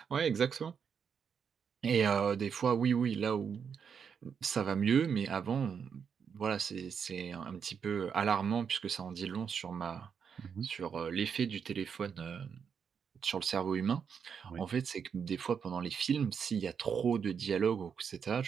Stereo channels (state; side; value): quieter; left; 6.9 dB